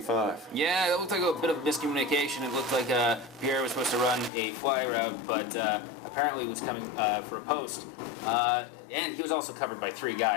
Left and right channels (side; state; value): right; drops out; at 4.3 s